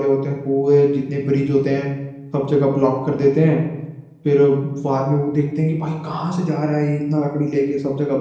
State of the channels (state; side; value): identical; both; correlation 1.00